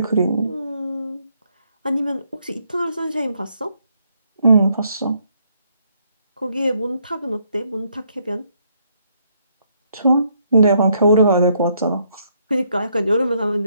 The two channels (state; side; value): inverted; both; correlation -0.72